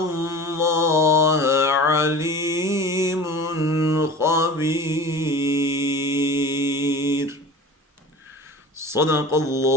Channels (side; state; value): both; normal; correlation 0.38